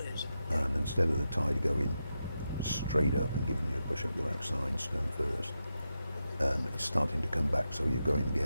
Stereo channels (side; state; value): both; inverted; correlation -0.88